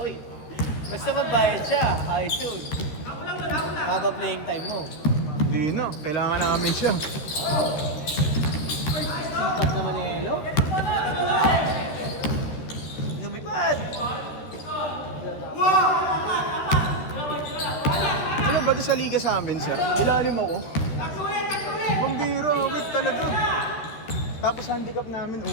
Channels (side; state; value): right; late; 13 ms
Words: basta magbayad siya, ayos yun. Haba playing time mo. Hindi na, kailangan namin siya. Simpak naman ni Elo. Lumipad! Ano ba sa liga sa amin siya? Ilalim ako. Pambira, wait talaga. Tapos handicap namin